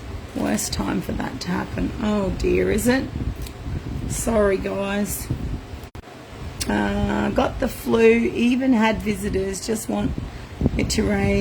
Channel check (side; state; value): both; identical; correlation 1.00